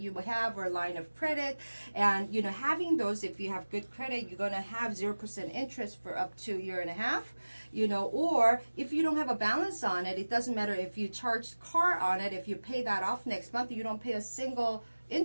have or line of credit. And, having those, if you have good credit, you're going to have 0% interest for up to a year and a half. Or if you don't have a balance on it, it doesn't matter if you charge car on it. If you pay that off next month, you don't pay a single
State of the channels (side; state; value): both; inverted; correlation -1.00